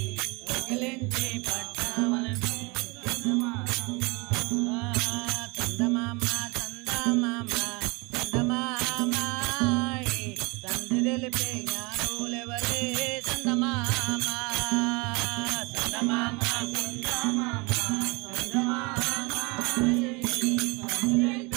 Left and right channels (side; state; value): left; quieter; 27.4 dB